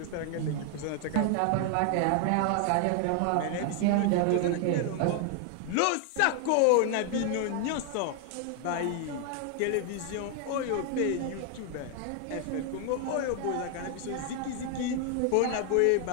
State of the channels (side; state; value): both; different; correlation 0.00